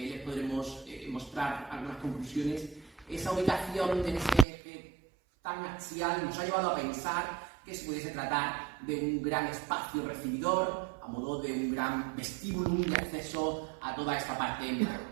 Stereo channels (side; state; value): left; drops out; at 4.5 s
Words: podremos mostrar algunas conclusiones. Esa ubicación de ese eje tan axial nos ha llevado a pensar que se pudiese tratar de un gran espacio recibidor, a modo de un gran vestíbulo de acceso a toda esta parte